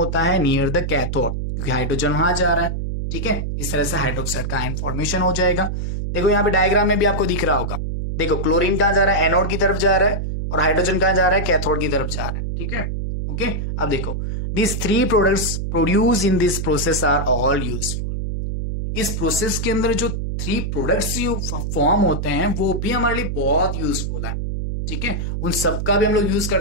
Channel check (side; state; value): right; noise; hum, 2 dB below the sound